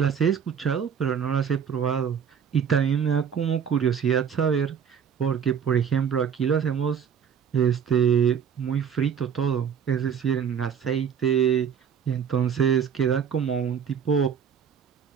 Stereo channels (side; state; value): left; quieter; 7.6 dB